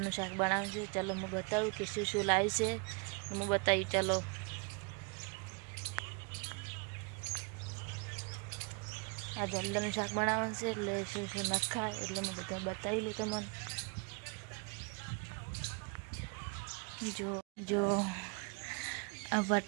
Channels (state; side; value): quieter; left; 33.7 dB